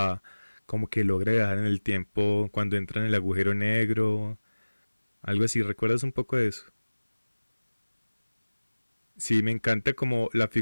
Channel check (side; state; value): both; inverted; correlation -1.00